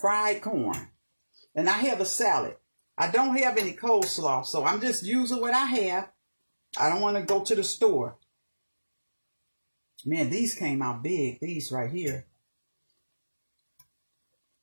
corn. And I have a salad. I don't have any coleslaw, so I'm just using what I have. I don't want to go to the store. Man, these came out big. These right here.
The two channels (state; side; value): inverted; both; correlation -1.00